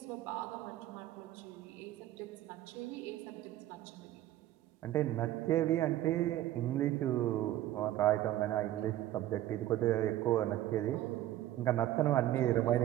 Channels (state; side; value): quieter; left; 13.8 dB